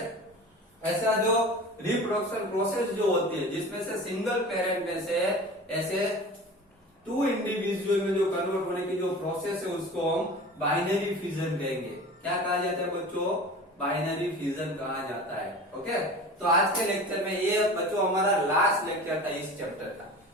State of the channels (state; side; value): normal; both; correlation 0.36